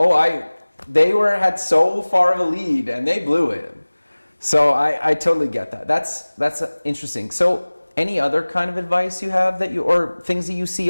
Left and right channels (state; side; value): inverted; both; correlation -1.00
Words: They had so far of a lead, and they blew it. So I totally get that. That's interesting. So any other kind of advice you have or things that you see